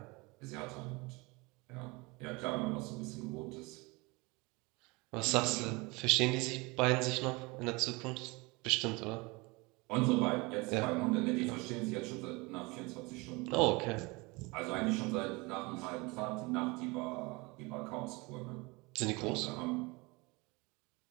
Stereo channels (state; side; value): quieter; left; 25.6 dB